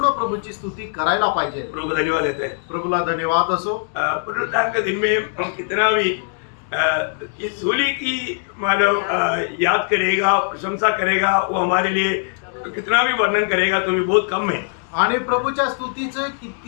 प्रभूची स्तुती करायला पाहिजे। प्रभु को धन्यवाद देते हैं। प्रभूला धन्यवाद असो। पुनरुत्थान के दिन में हम कितना भी इस सूली की मानव याद करेगा, प्रशंसा करेगा, वो हमारे लिए कितना भी वर्णन करेगा तो भी बहुत कम है। आणि प्रभूच्या स्तुतीचं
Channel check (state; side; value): silent; right; 57 dB below the other